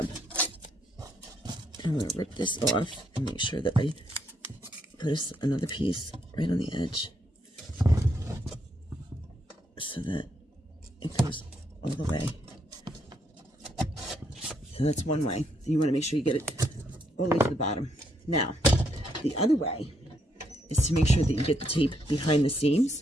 I'm going to rip this off and make sure that I put another piece right on the edge so that it goes all the way. So that's one way. You want to make sure you get it all the way to the bottom. Now, the other way is to make sure that you get the tape behind the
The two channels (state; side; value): normal; both; correlation 0.75